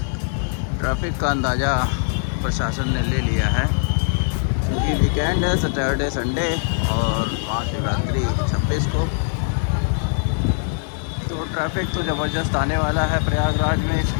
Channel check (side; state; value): right; silent; 60 dB below the other